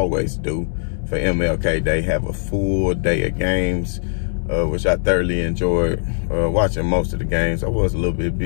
do for MLK. They have a full day of games, which I thoroughly enjoyed watching most of the games. I was a little bit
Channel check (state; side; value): silent; right; 66 dB below the other